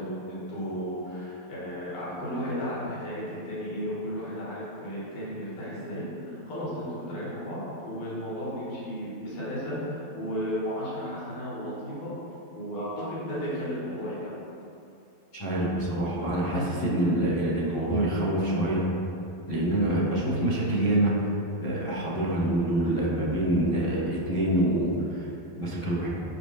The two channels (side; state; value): right; late; 12 ms